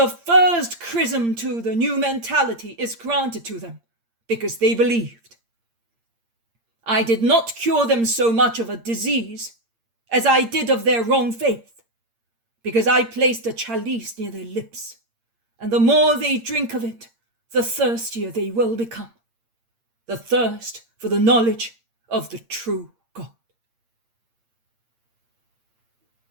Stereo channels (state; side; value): late; left; 8.7 ms